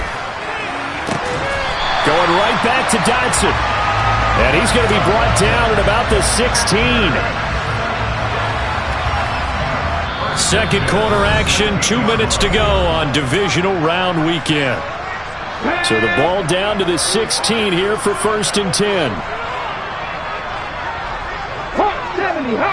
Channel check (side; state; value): both; identical; correlation 1.00